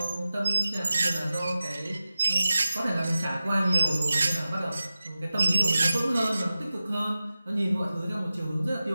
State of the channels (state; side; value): inverted; both; correlation -0.95